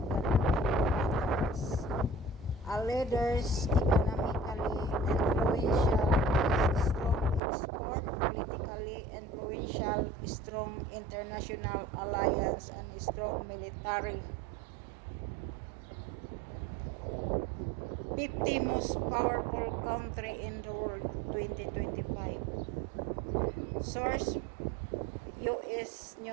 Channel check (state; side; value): drops out; left; at 7.4 s